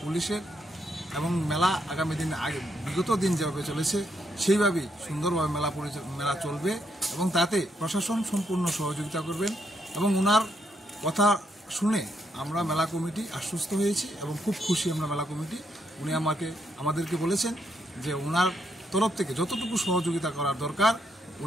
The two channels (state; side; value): normal; both; correlation 0.77